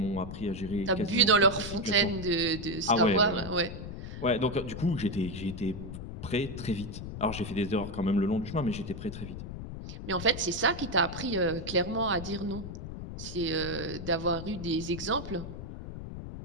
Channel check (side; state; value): left; noise; rumble, 9 dB below the sound